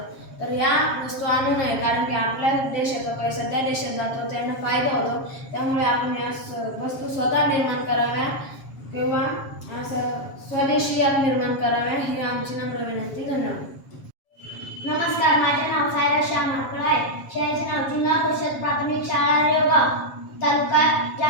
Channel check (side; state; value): right; late; 7.3 ms